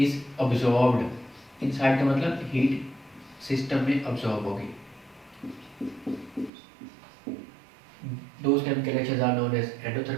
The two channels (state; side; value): drops out; left; at 6.5 s